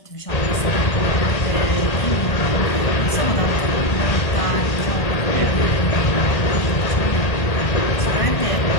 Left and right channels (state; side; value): late; right; 1.6 ms